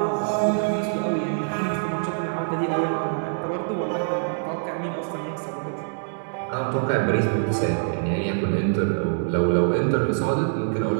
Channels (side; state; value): left; silent; digital silence